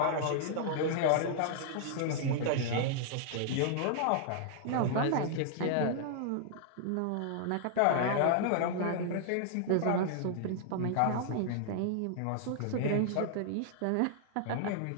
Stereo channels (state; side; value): different; both; correlation -0.01